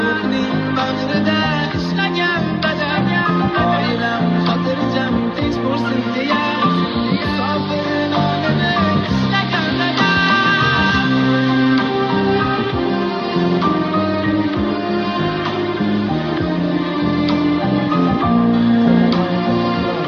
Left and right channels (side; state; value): both; identical; correlation 1.00